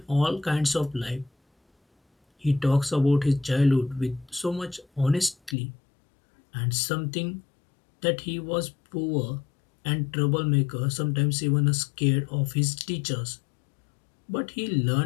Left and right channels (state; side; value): drops out; right; at 5.6 s